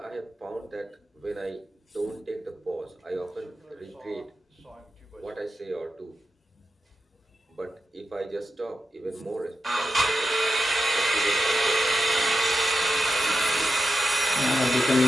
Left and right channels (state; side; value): normal; both; correlation 0.90